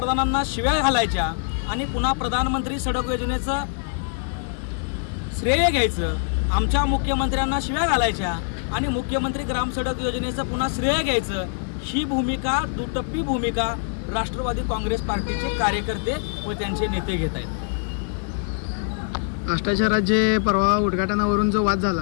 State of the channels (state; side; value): silent; right; digital silence